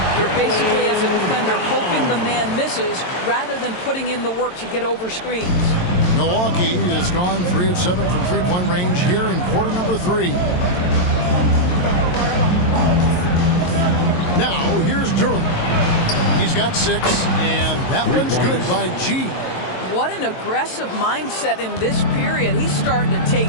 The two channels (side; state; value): right; late; 22 ms